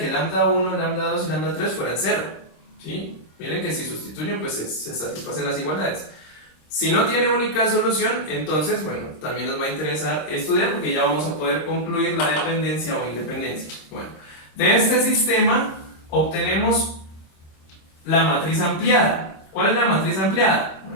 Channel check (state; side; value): late; right; 26 ms